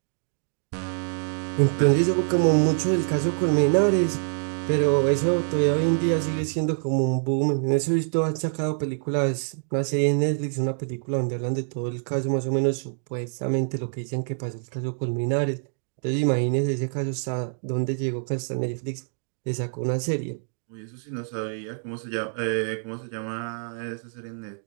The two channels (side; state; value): left; silent; digital silence